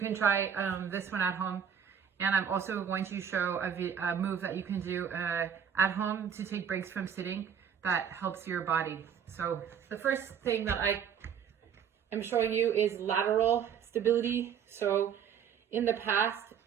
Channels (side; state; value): left; quieter; 8.0 dB